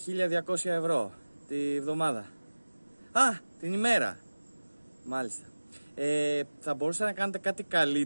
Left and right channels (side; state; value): both; inverted; correlation -1.00